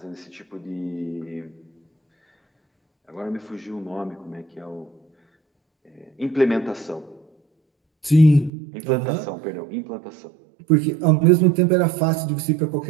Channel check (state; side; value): drops out; left; at 8.5 s